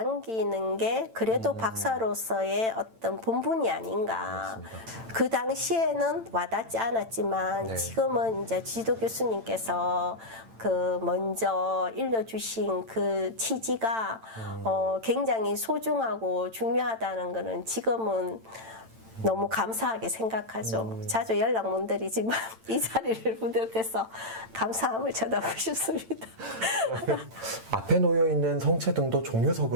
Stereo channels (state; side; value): late; left; 8.9 ms